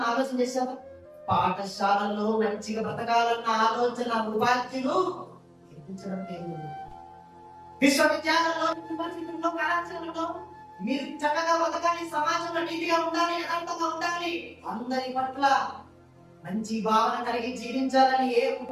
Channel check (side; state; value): both; identical; correlation 1.00